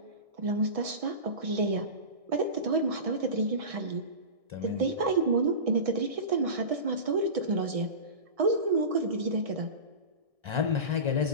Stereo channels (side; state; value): left; late; 1.6 ms